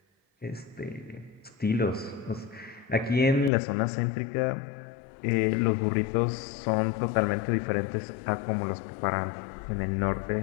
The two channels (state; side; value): drops out; right; at 3.5 s